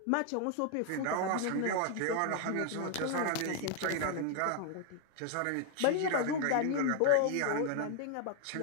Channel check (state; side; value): different; both; correlation 0.00